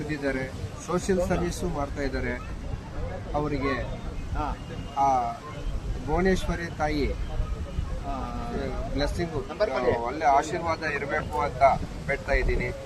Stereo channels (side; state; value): both; identical; correlation 1.00